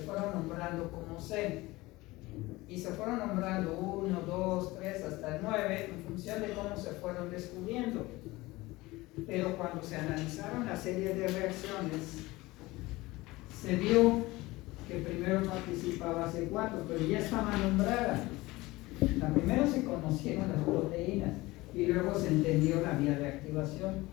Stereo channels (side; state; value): right; quieter; 20.3 dB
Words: nombrando como C y se fueron nombrando 1, 2, 3 hasta el 9 en función de cómo se fueron descubriendo. Pero cuando se analizaron la serie de reacciones, se vio que primero participaba C4, pero ya estaba nombrada. Primero se conocieron las proteínas y luego se entendió la vía de